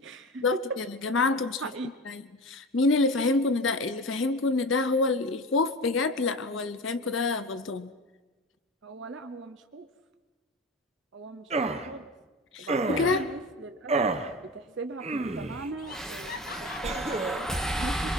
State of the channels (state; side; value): normal; both; correlation 0.30